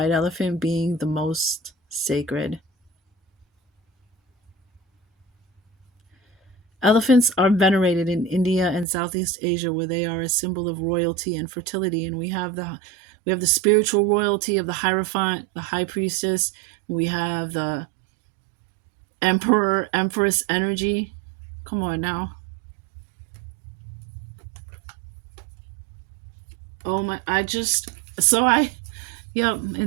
elephant being the most sacred. Elephants are venerated in India and Southeast Asia, where they are a symbol of royalty and fertility. And we have the spiritual royalty of the Hierophant, the High Priestess. We have the Emperor, Empress energy. Come on now. Oh my! Yep.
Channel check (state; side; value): drops out; left; at 8.8 s